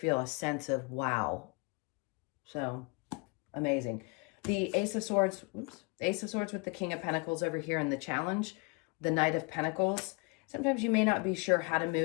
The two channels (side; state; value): right; quieter; 29.4 dB